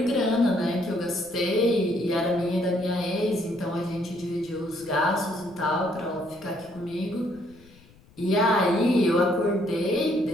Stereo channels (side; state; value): left; noise; rumble, 26 dB below the sound